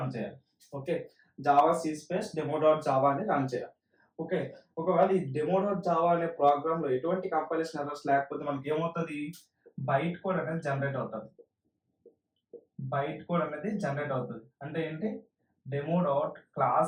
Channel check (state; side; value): identical; both; correlation 1.00